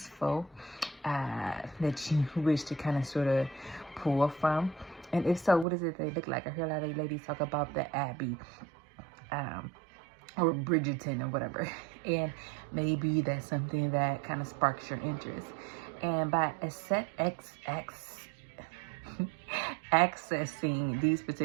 that you wish to kind of sort of pull from? And if so, what does it they look like? I hear a lot of ladies talk about the Abbey, or Bridgerton or whatever. And maybe that's something that kind of sparks your interest. And by accessing these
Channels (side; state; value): left; drops out; at 5.7 s